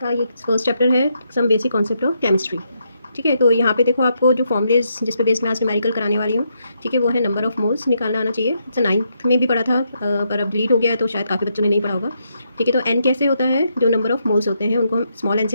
ये फर्स्ट चैप्टर है some basic concept of chemistry. ठीक है, तो यहाँ पे देखो आपको जो फॉर्मूलेज जिस पे बेस मैं आज न्यूमेरिकल कराने वाली हूँ, ठीक है, वो है नंबर ऑफ मोल्स निकालना आना चाहिए। तो 9th में भी पढ़ा था पर अब डिलीट हो गया है तो शायद काफ़ी बच्चों ने नहीं पढ़ा होगा। ठीक है, तो एन कैसे होता है, जो नंबर ऑफ मोल्स होते हैं उनको हम स्मॉल एन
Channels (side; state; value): both; inverted; correlation -0.79